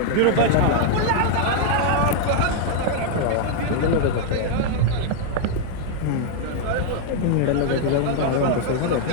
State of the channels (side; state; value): both; different; correlation 0.00